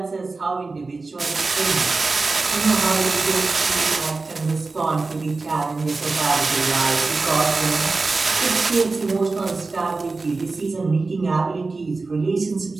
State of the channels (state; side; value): quieter; left; 3.8 dB